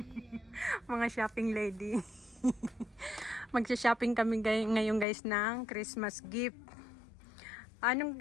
Mga shopping lady. Magsha-shopping kami ngayon guys ng Christmas gift.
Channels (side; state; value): right; drops out; at 5.1 s